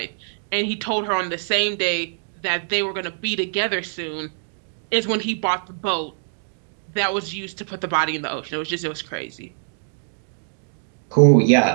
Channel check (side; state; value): left; silent; digital silence